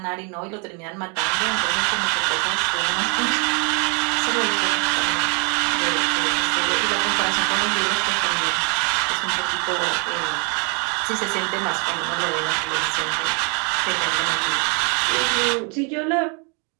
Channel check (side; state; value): left; quieter; 36.0 dB